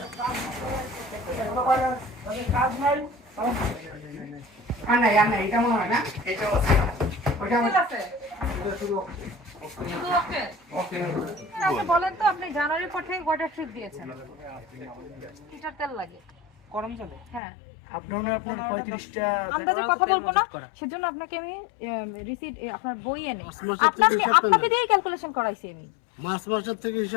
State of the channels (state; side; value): drops out; right; at 17.4 s